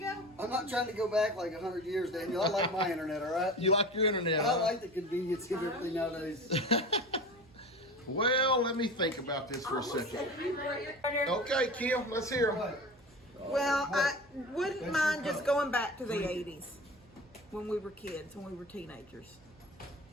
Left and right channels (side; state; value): right; noise; hum, 28 dB below the sound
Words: I'm not trying to go back like 100 years, Daniel. I like my internet, all right? You like your internet, I huh? like the convenience of everything nowadays. Well, let me think about this for a second. Okay, Kim, let's hear 'em. Well, I wouldn't mind just going back to the 80s when we were kids, when we were teenagers.